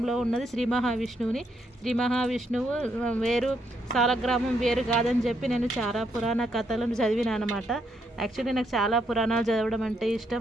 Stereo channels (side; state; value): both; normal; correlation 0.76